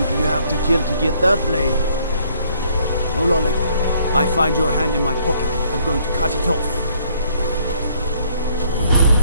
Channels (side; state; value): both; inverted; correlation -0.65